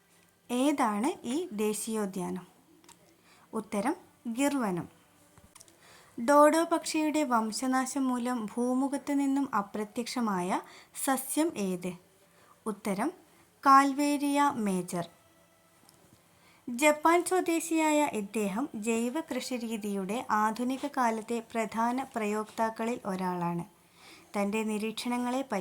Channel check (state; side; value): identical; both; correlation 1.00